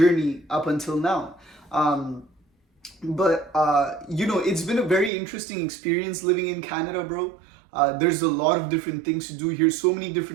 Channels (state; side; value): drops out; left; at 5.1 s